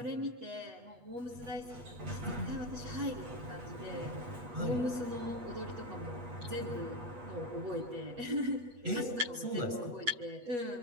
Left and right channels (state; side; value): late; left; 8.3 ms